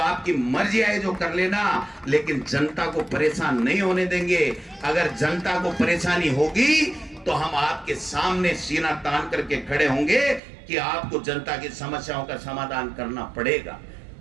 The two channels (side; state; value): left; drops out; at 10.4 s